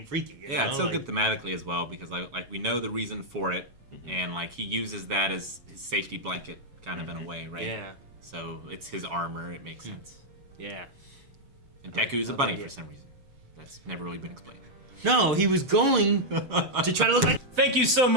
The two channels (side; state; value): left; late; 7.2 ms